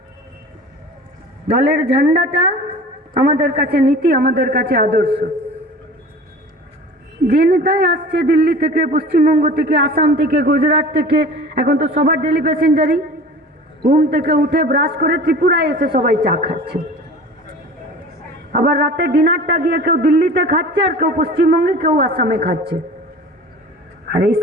দলের ঝান্ডাটা আমাদের কাছে নীতি, আমাদের কাছে আদর্শ। যে নেতাই আসছে দিল্লি থেকে, পশ্চিমবঙ্গ থেকে, আসাম থেকে, গুজরাট থেকে, এখন তো সবার ডেলি প্যাসেঞ্জারই ঘুম থেকে উঠে ব্রাশ করে ত্রিপুরায় এসে সবাই চা খাচ্ছে। আবার রাতে ডিনারটা গিয়ে কেউ দিল্লিতে খাচ্ছে, আর কেউ পশ্চিমবঙ্গে, কেউ আসামে খাচ্ছে। আর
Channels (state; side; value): normal; both; correlation 0.40